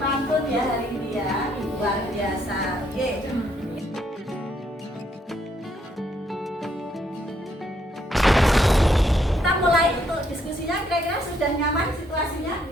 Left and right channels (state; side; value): normal; both; correlation 0.72